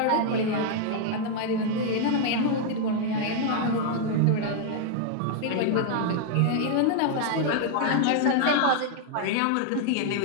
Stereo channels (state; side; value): different; both; correlation 0.00